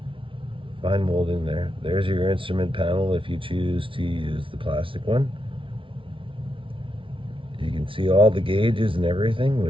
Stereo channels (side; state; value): left; late; 0.25 ms